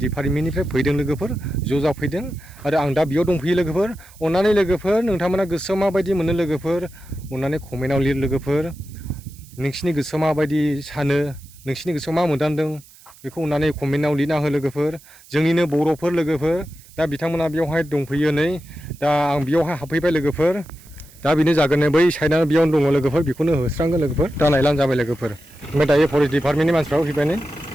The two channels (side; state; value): right; noise; hiss, 24 dB below the sound